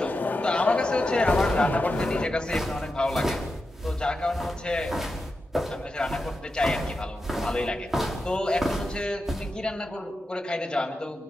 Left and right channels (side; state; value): both; normal; correlation 0.89